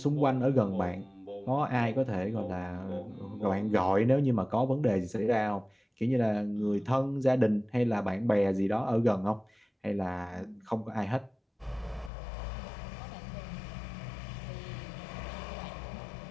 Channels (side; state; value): right; drops out; at 12.1 s